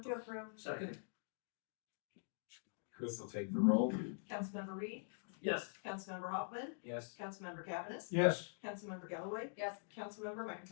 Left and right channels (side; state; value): right; silent; digital silence